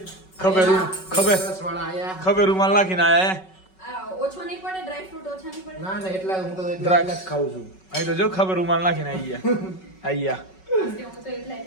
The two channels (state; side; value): late; right; 5.3 ms